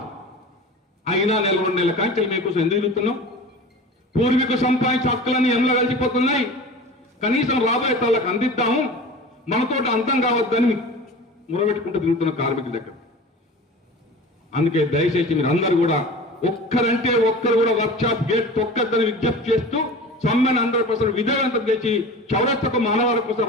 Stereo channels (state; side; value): normal; both; correlation 0.36